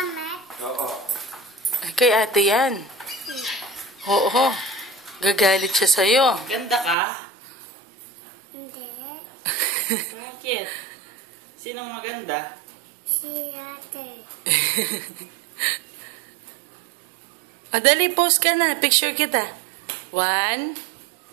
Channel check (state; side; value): drops out; left; at 7.0 s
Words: Ay, kay ate yan. Oo. Gagalit siya sa'yo. Ganda ka? Hindi. Bakit? Sinong maganda? Si ate. O, dali. Pose ka na. Picture kita. 1,